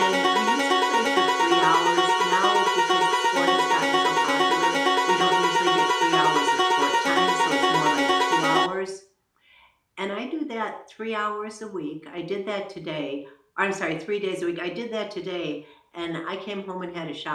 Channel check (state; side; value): identical; both; correlation 1.00